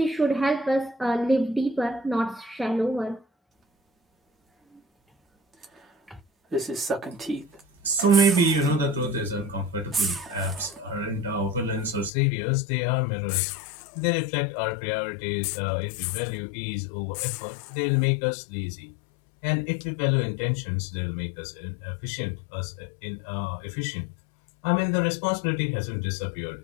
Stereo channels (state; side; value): drops out; right; at 12.1 s